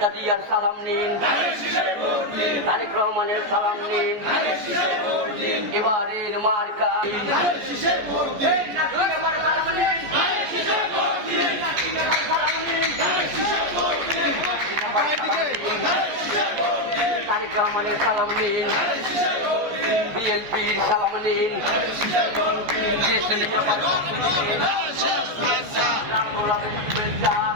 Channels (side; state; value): left; late; 14 ms